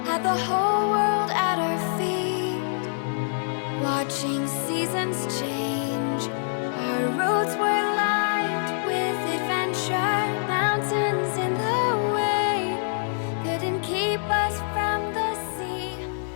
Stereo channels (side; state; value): right; silent; digital silence